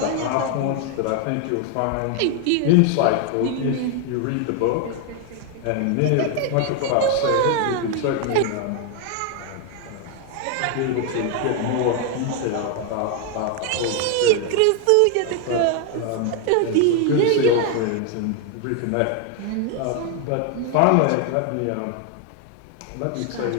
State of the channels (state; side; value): different; both; correlation 0.00